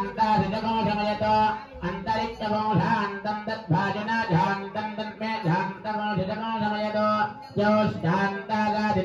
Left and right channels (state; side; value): identical; both; correlation 1.00